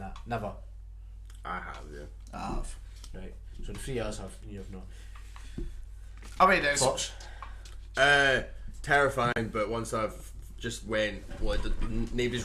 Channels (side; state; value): both; identical; correlation 1.00